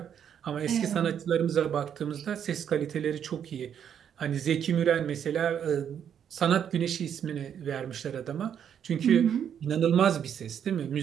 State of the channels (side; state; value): left; quieter; 8.7 dB